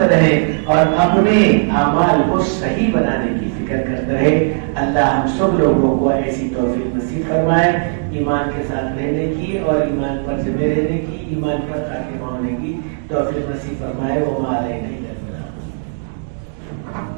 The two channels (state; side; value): silent; left; digital silence